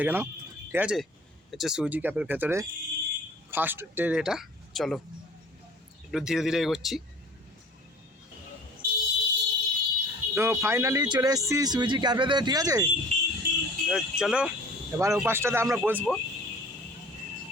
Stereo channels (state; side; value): normal; both; correlation 0.48